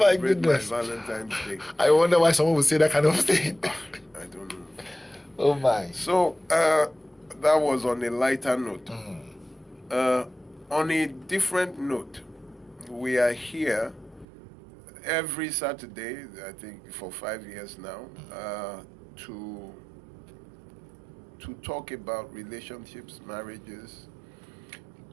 my Valentine's Day. I wonder why someone would say that kind of thing. I don't know. Oh my. So that was on a lighter note. On a different note, we are here every Saturday, I think for 5 years now, to talk about relationships, marriages.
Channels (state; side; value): drops out; left; at 14.2 s